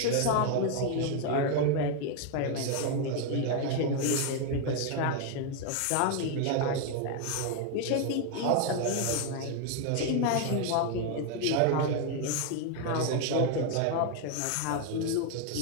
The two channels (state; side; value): different; both; correlation 0.01